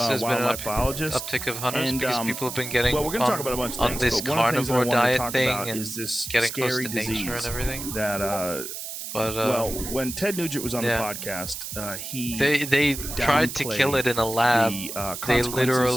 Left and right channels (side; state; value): right; noise; hiss, 8 dB below the sound